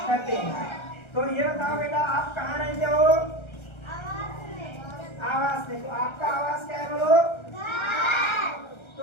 हैं। तो ये बताओ बेटा, आप कहाँ रहते हो? आवास में। तो आपका आवास क्या है बोलो? तो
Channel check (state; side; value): late; right; 1.3 ms